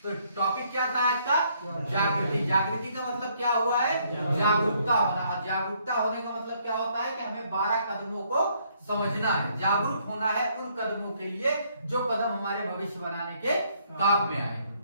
तो टॉपिक क्या था आज का? जागृति। जागृति का मतलब क्या हुआ है? जागरूकता होना। जागरूकता होने का मतलब क्या होता है कि हमें 12 कदमों को समझना है। जागरूक होना है उन कदमों के लिए जो कदम हमारे भविष्य बनाने के काम में आए।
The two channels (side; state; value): both; inverted; correlation -0.68